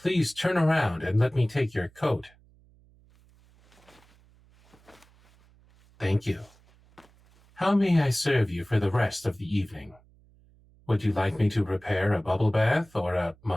turn around and let me take your coat. Thank you. How may I serve you for the rest of the evening? Would you like me to prepare a bubble bath or a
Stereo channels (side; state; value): right; noise; hum, 29 dB below the sound